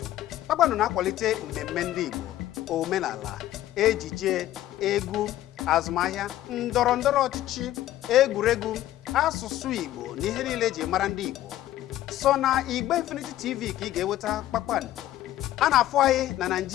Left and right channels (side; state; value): right; quieter; 13.7 dB